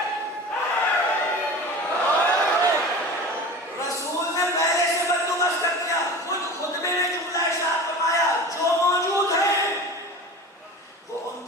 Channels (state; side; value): normal; both; correlation 0.34